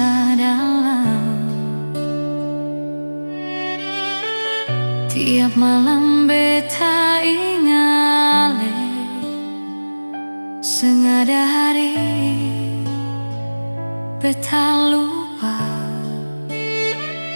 dalam. Tiap malam beta ingale, sengada hari beta lupa.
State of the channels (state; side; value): inverted; both; correlation -1.00